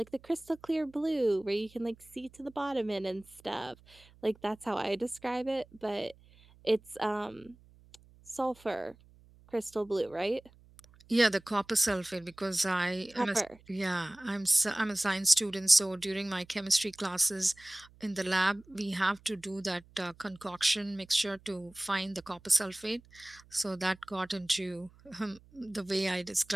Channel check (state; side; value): noise; right; hum, 26 dB below the sound